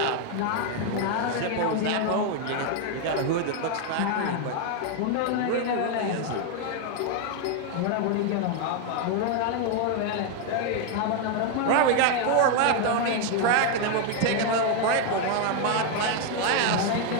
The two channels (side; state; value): both; different; correlation 0.01